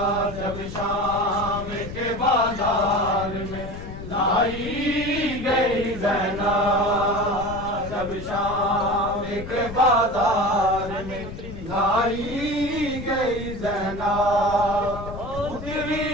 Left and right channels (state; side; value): noise; left; rumble, 10 dB below the sound